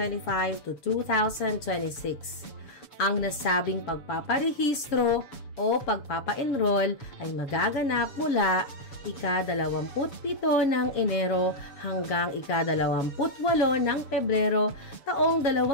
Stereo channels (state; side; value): late; right; 7.0 ms